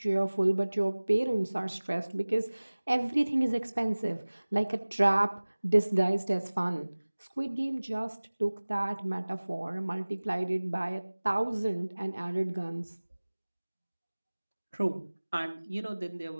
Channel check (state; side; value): inverted; both; correlation -1.00